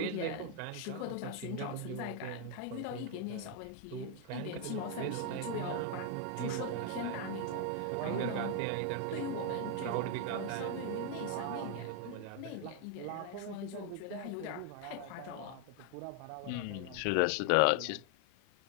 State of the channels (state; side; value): different; both; correlation 0.01